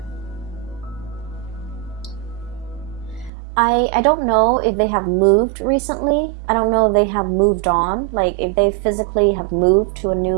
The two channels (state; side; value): drops out; left; at 3.3 s